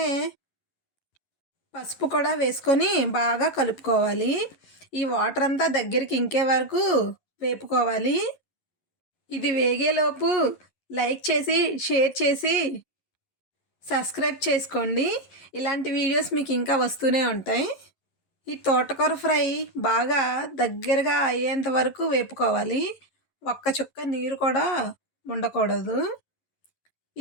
పసుపు కూడా వేసుకొని బాగా కలుపుకోవాలి. ఈ వాటర్ అంతా దగ్గరికి ఇంకే వరకు వేపుకోవాలి. ఇది వేగేలోపు లైక్ చేసి, షేర్ చేసి, సబ్స్క్రైబ్ చేసుకోండి. ఇలాంటి వీడియోస్ మీకు ఇంకా వస్తూనే ఉంటాయి. ఈ తోటకూర ఫ్రై బాగా దగ్గరగా అయ్యేంత వరకు వేపుకోవాలి. ఒక్క చుక్క నీరు కూడా ఉండకూడదు.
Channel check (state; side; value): late; right; 11 ms